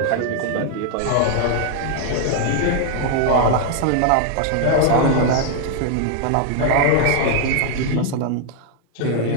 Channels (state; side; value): different; both; correlation 0.00